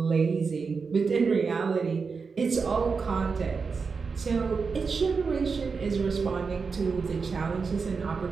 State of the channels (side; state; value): left; quieter; 5.0 dB